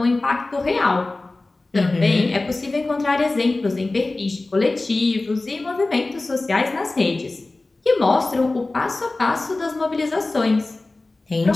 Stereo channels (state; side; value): quieter; right; 3.1 dB